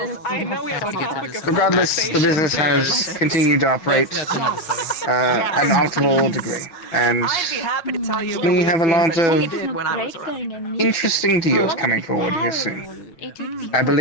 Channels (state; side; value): late; right; 6.0 ms